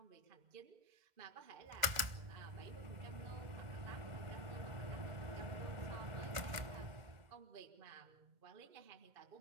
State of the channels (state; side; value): late; left; 2.1 ms